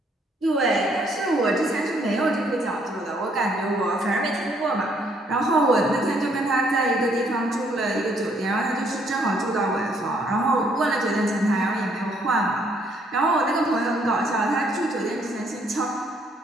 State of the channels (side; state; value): both; normal; correlation 0.67